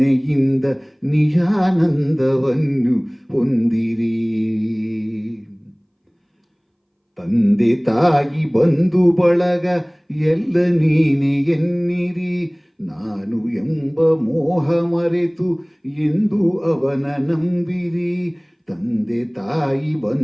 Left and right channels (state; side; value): identical; both; correlation 1.00